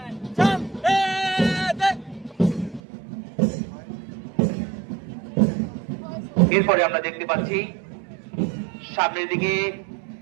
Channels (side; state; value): left; drops out; at 2.8 s